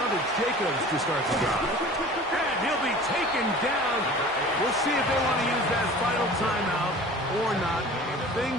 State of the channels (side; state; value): both; normal; correlation 0.42